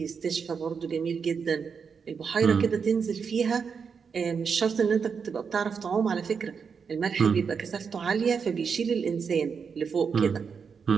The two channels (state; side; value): quieter; left; 6.1 dB